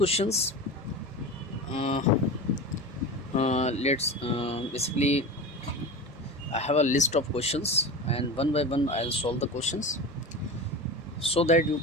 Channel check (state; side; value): normal; both; correlation 0.29